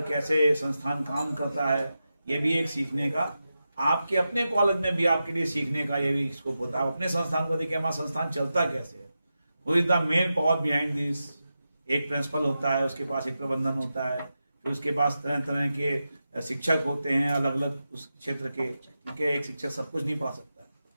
कैसे संस्थान काम करता है, ये भी एक सीखने का, आपके अपने कॉलेज में भी आपके लिए सीखने का ये भी स्कोप होता है। अपने संस्थान को देखिए, हमारा संस्थान चलता कैसे है, who is the main power behind this. एक प्रिंसिपल होता है, उसके पास एक प्रबंधन होता है, फिर उसके पास तरह तरह के शिक्षक होते हैं अलग अलग उस क्षेत्र के। ठीक है, एक शिक्षक सब कुछ नहीं पढ़ा सकता है,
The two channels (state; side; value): inverted; both; correlation -0.91